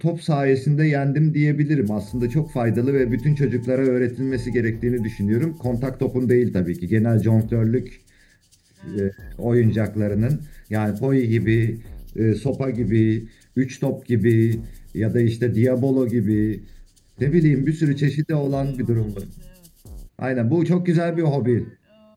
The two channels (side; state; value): both; identical; correlation 1.00